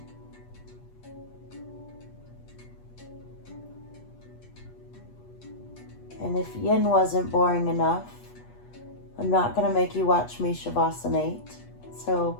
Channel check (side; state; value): right; late; 8.3 ms